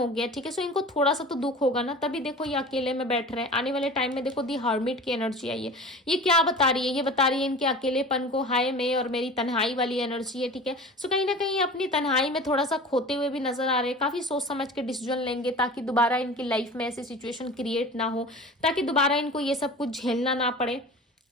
गया, ठीक है। सो इनको थोड़ा सा तो दुख होगा ना, तभी देखो ये अकेले में बैठ रहे हैं। आने वाले टाइम में देखो दी हर्मिट की एनर्जी आई है, ये क्या बता रही है? ये बता रही है इनके अकेलेपन को, हाय मैं और मेरी तन्हाई वाली एनर्जी है, ठीक है। सो कहीं ना कहीं अपनी तन्हाई में थोड़ा सा खोते हुए भी नजर आ रहे हैं, काफी सोच समझ के डिसीजन लेंगे ताकि दोबारा इनकी लाइफ में ऐसी सिचुएशन क्रिएट ना हो, ताकि दोबारा इनको ये सब कुछ झेलना ना पड़े।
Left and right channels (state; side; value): normal; both; correlation 0.37